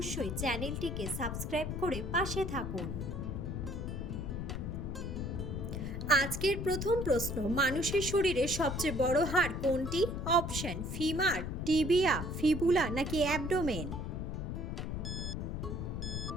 চ্যানেলটিকে সাবস্ক্রাইব করে পাশে থাকুন। আজকের প্রথম প্রশ্ন, মানুষের শরীরে সবচেয়ে বড় হাড় কোনটি? অপশন: ফিমার, টিবিয়া, ফিবুলা নাকি অ্যাবডোমেন।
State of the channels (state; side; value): noise; left; rumble, 4 dB below the sound